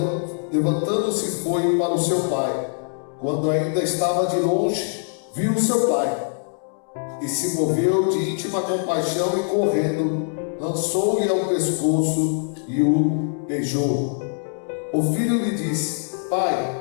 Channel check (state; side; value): silent; right; 63 dB below the other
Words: levantando-se, foi para o seu pai. Quando ainda estava de longe, viu o seu pai e se moveu de íntima compaixão e, correndo, lançou-lhe ao pescoço e o beijou. O filho lhe disse: Pai,